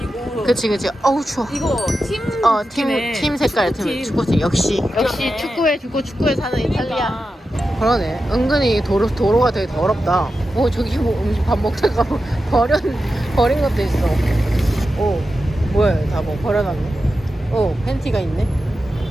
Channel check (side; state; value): both; normal; correlation 0.91